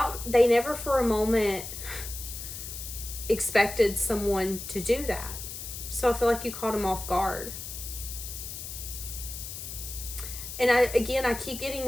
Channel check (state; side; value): noise; left; hiss, 9 dB below the sound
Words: they never for a moment expected someone to do that. So I feel like you caught them off guard. And I keep